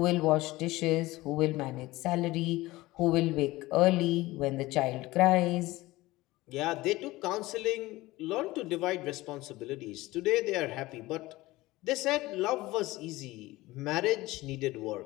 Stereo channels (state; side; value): quieter; right; 19.1 dB